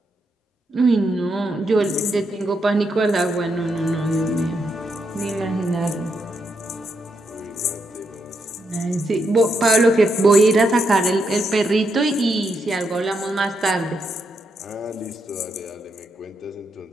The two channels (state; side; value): normal; both; correlation 0.80